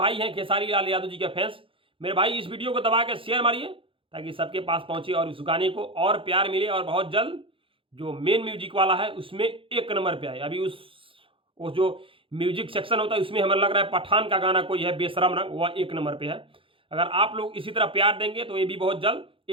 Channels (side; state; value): left; late; 0.26 ms